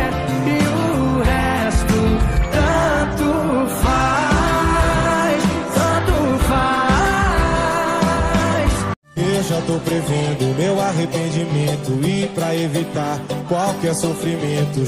E o resto tanto faz, tanto faz. Eu já tô prevendo meu arrependimento e pra evitar qualquer sofrimento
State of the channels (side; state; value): both; identical; correlation 1.00